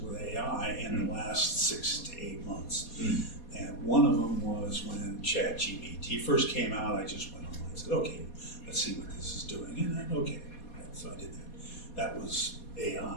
AI in the last 6 to 8 months. And one of them was when ChatGPT first came out. I just went online and said, okay, let's see what this is doing. And then, okay, so I did that. That was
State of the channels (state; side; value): late; right; 4.2 ms